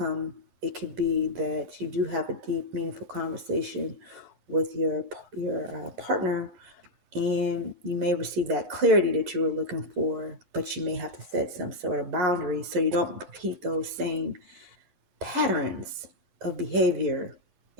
it could be that you do have a deep, meaningful conversation with your partner, and you may receive that clarity that you were looking for, but you may have to set some sort of boundaries so you don't repeat those same patterns of behavior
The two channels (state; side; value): late; left; 11 ms